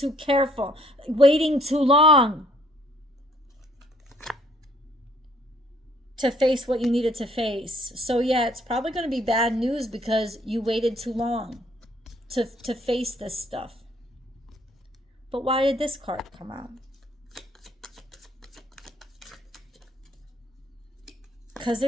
careful, waiting too long to face what you needed to face. So yeah, it's probably going to be bad news because you waited too long to face this stuff. But why did this card come out? Because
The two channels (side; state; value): both; normal; correlation 0.63